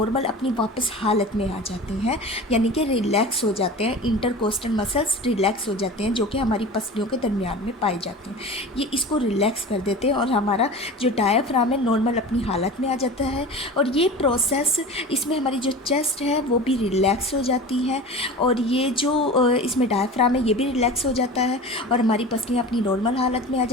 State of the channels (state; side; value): normal; both; correlation 0.34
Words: अपनी वापस हालत में आ जाती हैं, यानी कि रिलैक्स हो जाते हैं। इंटरकोस्टल मसल्स रिलैक्स हो जाते हैं जो कि हमारी पसलियों के दरमियान में पाए जाते हैं। ये इसको रिलैक्स कर देते हैं और हमारा जो डायाफ्राम है नॉर्मल अपनी हालत में आ जाता है। और ये प्रोसेस, इसमें हमारी जो चेस्ट है वो भी रिलैक्स हो जाती है, और ये जो इसमें डायाफ्राम है ये भी रिलैक्स हो जाता है, और हमारी पसलियाँ अपनी नॉर्मल हालत में आ